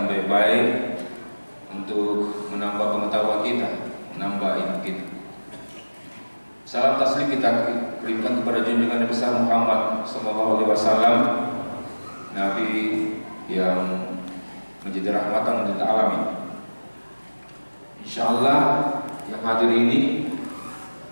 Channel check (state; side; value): inverted; both; correlation -1.00